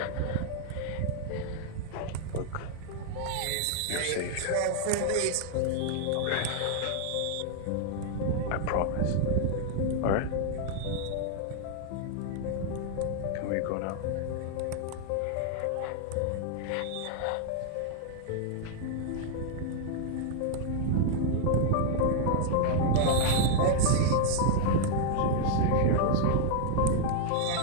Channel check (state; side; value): different; both; correlation 0.00